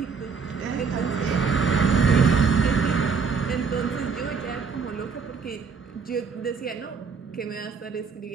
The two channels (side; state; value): left; quieter; 5.5 dB